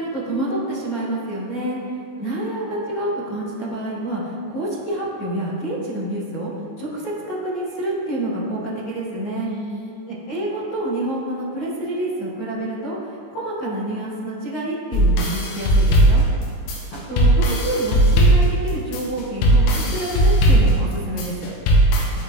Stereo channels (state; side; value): late; right; 19 ms